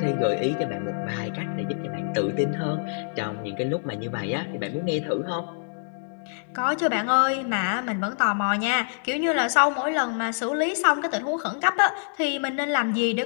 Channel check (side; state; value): right; silent; digital silence